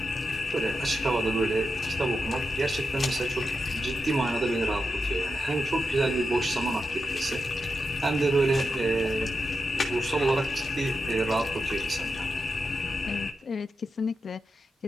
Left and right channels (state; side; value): normal; both; correlation 0.88